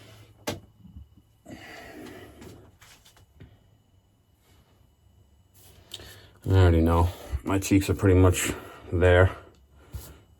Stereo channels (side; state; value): both; identical; correlation 1.00